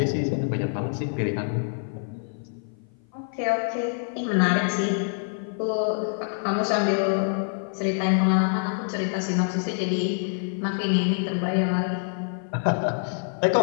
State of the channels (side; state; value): right; silent; 55 dB below the other